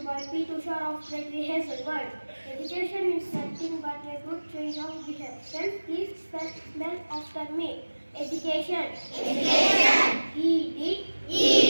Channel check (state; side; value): inverted; both; correlation -1.00